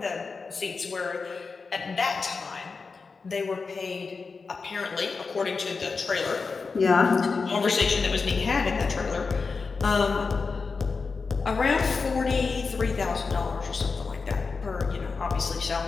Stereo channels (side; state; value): right; quieter; 4.6 dB